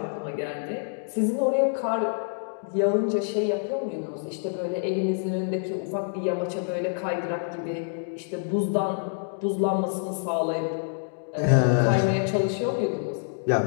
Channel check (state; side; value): silent; right; digital silence